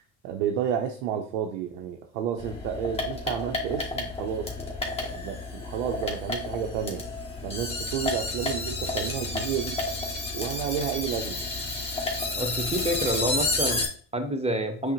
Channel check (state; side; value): normal; both; correlation 0.18